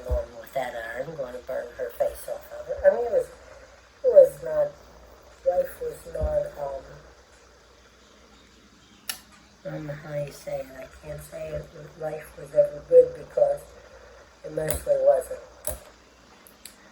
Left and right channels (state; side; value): identical; both; correlation 1.00